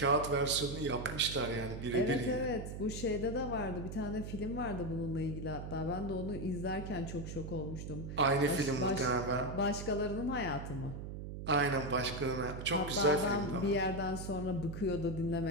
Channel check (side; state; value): right; noise; hum, 7 dB below the sound